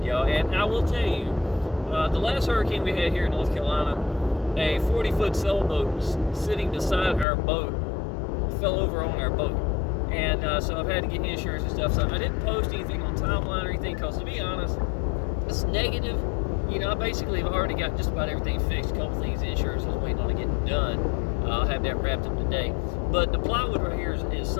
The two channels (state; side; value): drops out; right; at 7.2 s